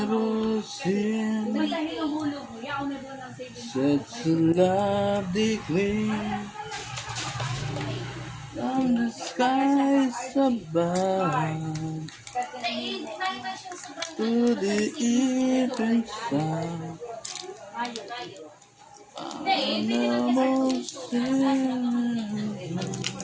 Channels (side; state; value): both; identical; correlation 1.00